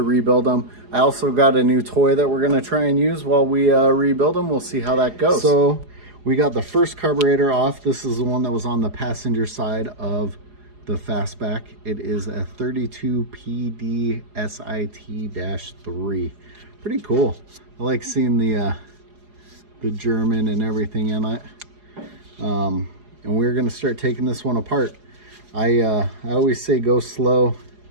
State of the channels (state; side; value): late; left; 4.8 ms